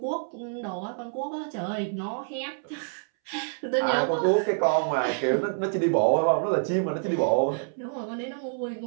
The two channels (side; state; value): left; silent; 60 dB below the other